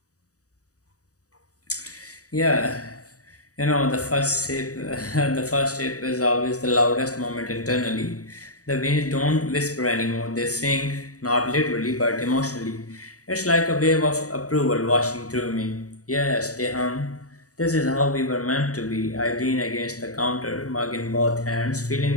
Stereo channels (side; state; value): right; late; 0.66 ms